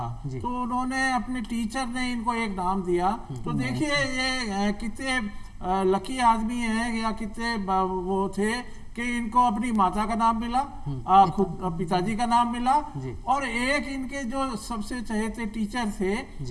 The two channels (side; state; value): both; identical; correlation 1.00